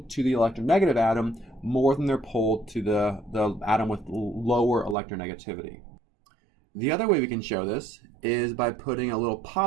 to the electronegative atom more than they're pulled to the atom with lower electronegativity. The other way we can show this is by putting a little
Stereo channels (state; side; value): drops out; left; at 5.0 s